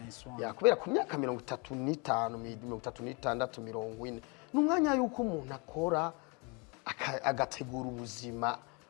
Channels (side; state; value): right; quieter; 31.1 dB